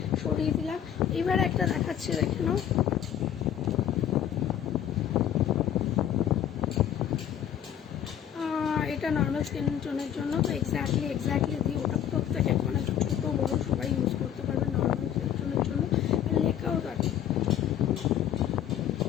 সরিয়ে দিলাম। এবার একটা দেখাচ্ছি, দেখে নাও। এটা নর্মাল স্কিন টোনের জন্য, তো এক্স্যাক্টলি দিই ওটা প্রত্যেকে, মানে ছোটো বড়ো সবাই ইউজ করতে পারবে নর্মাল স্কিন টোনের জন্য। আর লেখাও থাকে,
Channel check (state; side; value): quieter; right; 10.1 dB